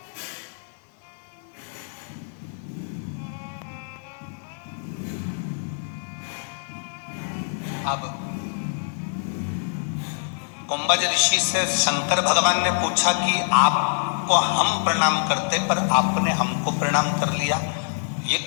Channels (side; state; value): right; silent; digital silence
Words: अब कुंभज ऋषि से शंकर भगवान ने पूछा कि आपको हम प्रणाम करते पर आपने हमको प्रणाम कर लिया, ये